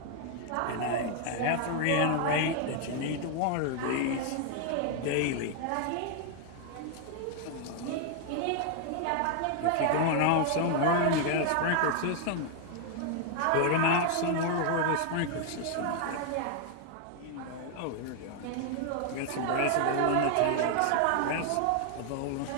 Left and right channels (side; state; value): both; different; correlation 0.00